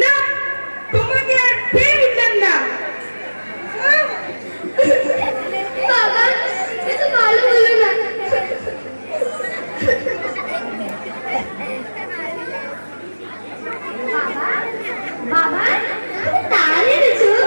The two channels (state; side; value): inverted; both; correlation -1.00